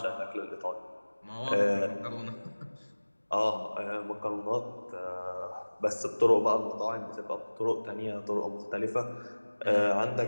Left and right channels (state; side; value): inverted; both; correlation -1.00